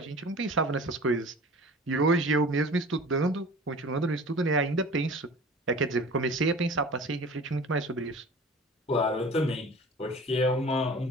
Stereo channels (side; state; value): both; normal; correlation 0.42